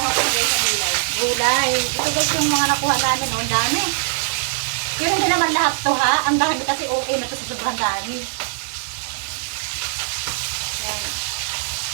ko guys sa gulay. gulay. Ito guys yung mga nakuha namin, oh, ang dami. Yun hindi naman lahat to ha, ang dami kasi okay na to sa sobrang dami. Yan.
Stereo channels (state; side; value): silent; left; 65 dB below the other